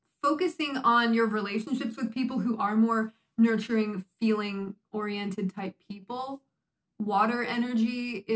focusing on your relationships with people who are more nurturing, feeling-oriented type people. Water energy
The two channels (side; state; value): both; identical; correlation 1.00